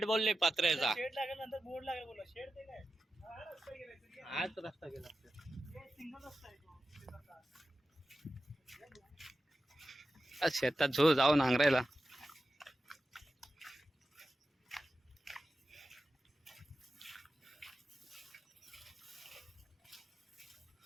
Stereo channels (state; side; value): normal; both; correlation 0.92